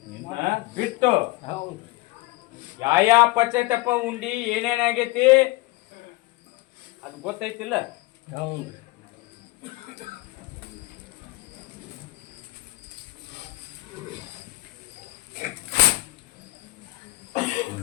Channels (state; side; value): quieter; right; 21.2 dB